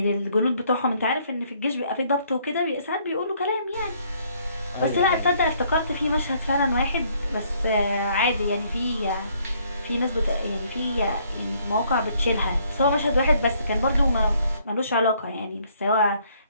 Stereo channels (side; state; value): both; inverted; correlation -0.65